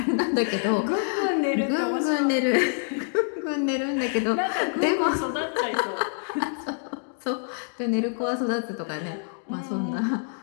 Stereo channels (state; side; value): silent; right; digital silence